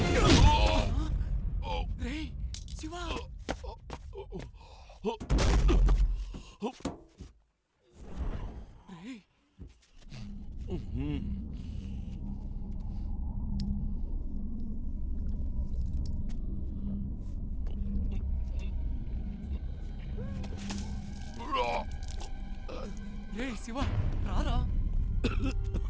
రే శివా రే రే శివ రారా.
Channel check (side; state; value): both; identical; correlation 1.00